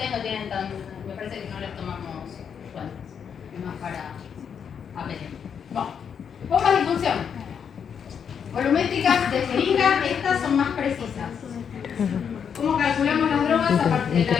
no tienen tan... Me parece que no les tomamos cuentas. Es más para aprender. Bueno, bombas de infusión. Volumétricas de jeringa, estas son más precisas. ¿Cómo calculamos las drogas a partir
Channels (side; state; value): right; quieter; 7.4 dB